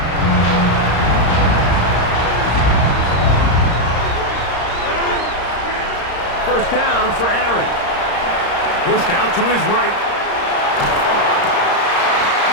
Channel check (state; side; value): late; right; 35 ms